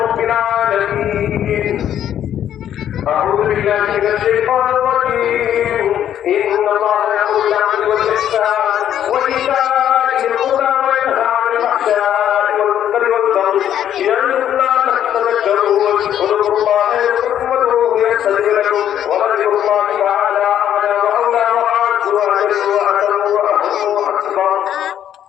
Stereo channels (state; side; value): quieter; right; 10.4 dB